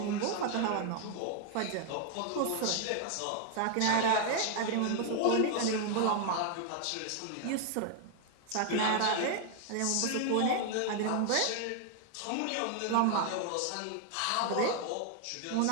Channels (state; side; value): different; both; correlation 0.00